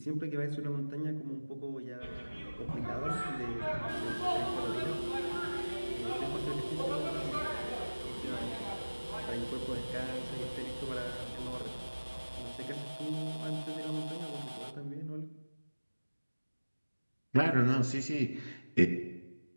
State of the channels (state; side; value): inverted; both; correlation -1.00